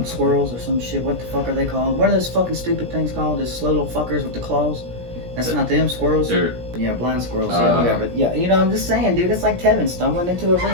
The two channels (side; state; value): left; late; 17 ms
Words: squirrels or some shit. What the fuck are they called? What are those fucking stupid things called? Those slow little fuckers with the claws? That's not them, squirrels? Yeah, blind squirrels, yeah, whatever. Yeah, you know, I'm just saying, dude, it's like Tevin stumbling into a